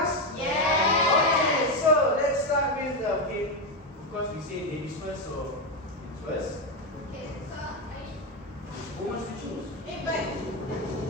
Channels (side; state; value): both; normal; correlation 0.09